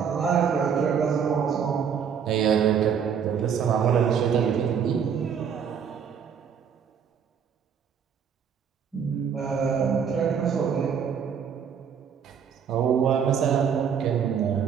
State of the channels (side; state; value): left; quieter; 7.4 dB